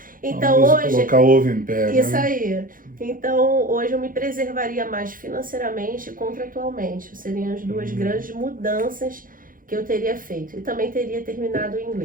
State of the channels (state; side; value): late; left; 0.40 ms